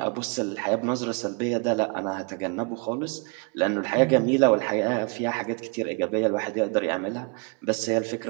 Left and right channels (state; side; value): quieter; left; 33.8 dB